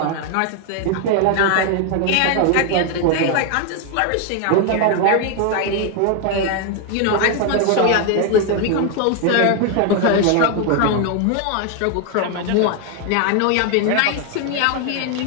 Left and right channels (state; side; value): different; both; correlation 0.01